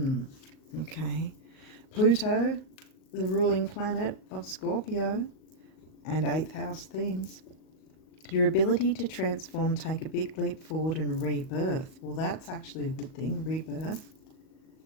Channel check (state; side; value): late; right; 38 ms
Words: Okay. Pluto, the ruling planet of Scorpio, and 8th house themes. Your ability to transform, take a big leap forward and rebirth. Well, that's actually a good thing, rebirth.